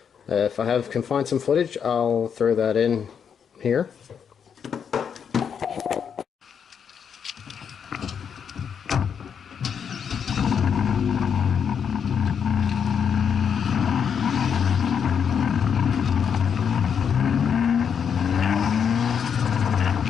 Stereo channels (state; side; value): quieter; right; 7.3 dB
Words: if I can find some footage, I'll throw that in here.